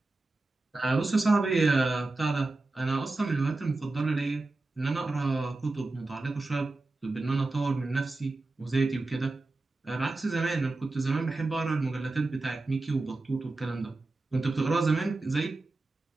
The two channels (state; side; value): quieter; left; 3.2 dB